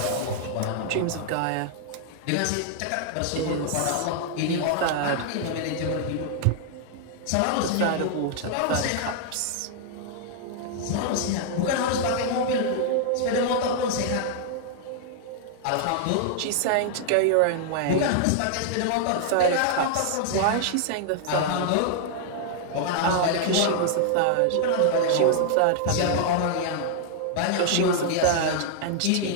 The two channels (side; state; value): both; different; correlation -0.01